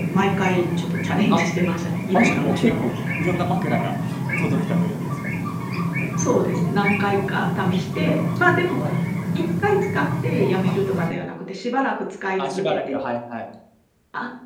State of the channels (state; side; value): identical; both; correlation 1.00